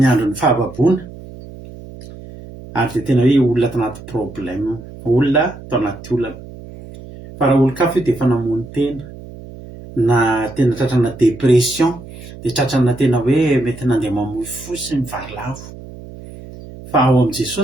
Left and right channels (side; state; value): right; noise; hum, 16 dB below the sound